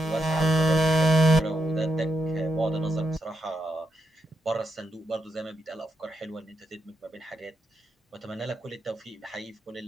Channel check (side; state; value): both; normal; correlation 0.83